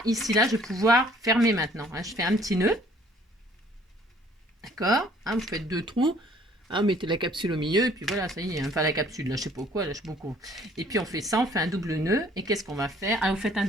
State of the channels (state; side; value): normal; both; correlation 0.58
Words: ici, là, je vais pouvoir fermer maintenant. Hein, je fais un petit nœud, d'accord, hein, vous faites 2 trous. Hein, mettez la capsule au milieu et puis voilà, ça y est. Enfin, la capsule, là, je sais pas quoi, là, je sais beaucoup. Et puis on fait ça, on fait un double nœud. Et qu'est-ce qu'on va faire? Ah, vous faites un